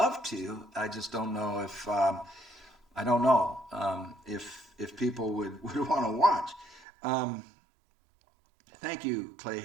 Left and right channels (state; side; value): drops out; left; at 6.9 s